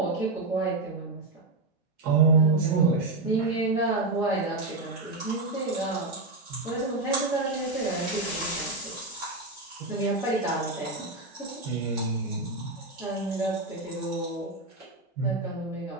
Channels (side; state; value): left; quieter; 3.2 dB